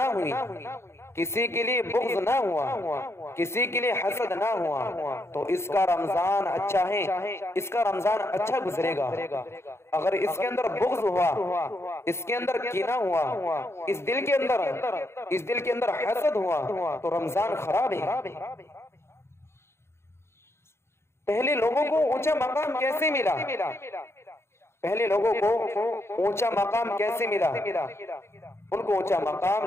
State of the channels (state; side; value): late; right; 0.12 ms